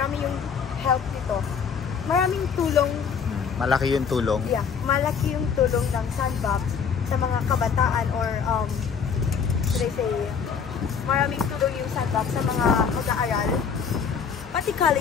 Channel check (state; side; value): quieter; right; 6.6 dB